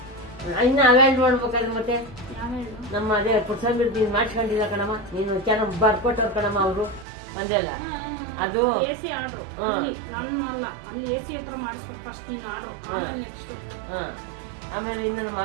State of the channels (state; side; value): drops out; left; at 7.1 s